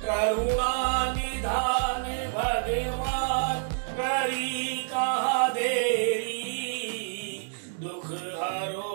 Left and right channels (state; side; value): silent; left; digital silence